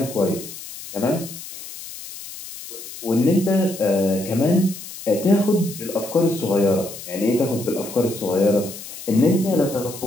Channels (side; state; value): left; noise; hiss, 13 dB below the sound